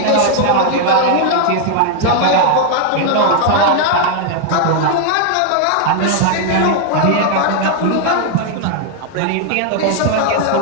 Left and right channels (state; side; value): different; both; correlation 0.00